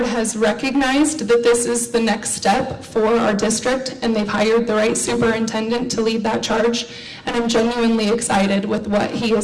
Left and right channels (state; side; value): identical; both; correlation 1.00